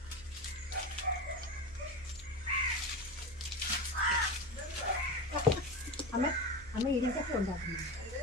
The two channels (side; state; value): right; noise; hum, 20 dB below the sound